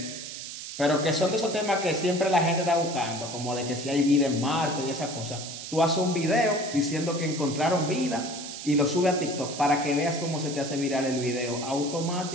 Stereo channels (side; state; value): right; noise; hiss, 9 dB below the sound